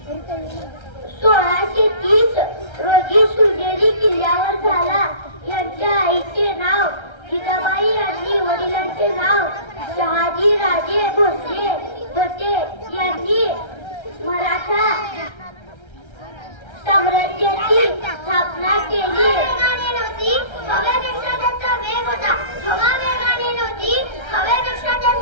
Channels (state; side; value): late; right; 1.3 ms